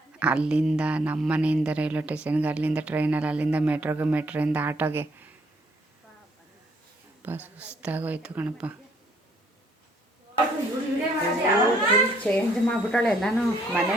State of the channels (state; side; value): normal; both; correlation 0.67